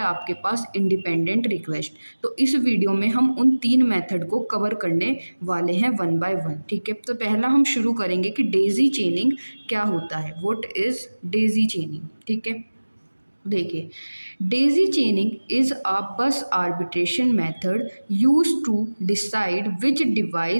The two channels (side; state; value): both; inverted; correlation -1.00